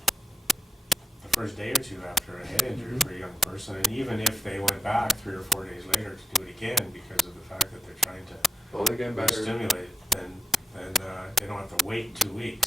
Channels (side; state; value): both; normal; correlation 0.86